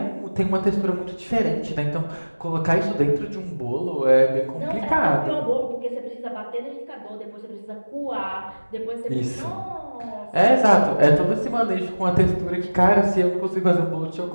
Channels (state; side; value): inverted; both; correlation -1.00